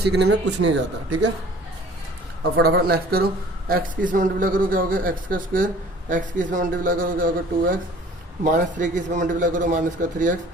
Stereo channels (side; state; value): both; normal; correlation 0.49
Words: में कुछ नहीं जाता, ठीक है। अब फटाफट नेक्स्ट करो, x की इसमें मल्टीप्लाई करो क्या हो गया, x का स्क्वायर, x की इसमें मल्टीप्लाई करो क्या होगा, 2x, -3 की इसमें मल्टीप्लाई करो, -3x,